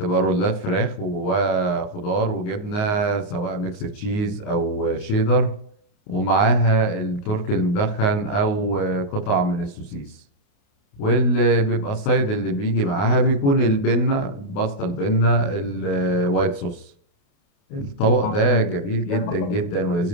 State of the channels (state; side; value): late; right; 29 ms